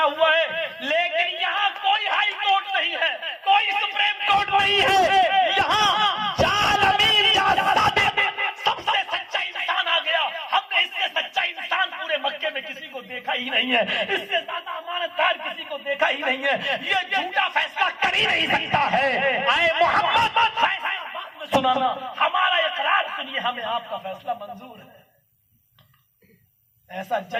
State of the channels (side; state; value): both; identical; correlation 1.00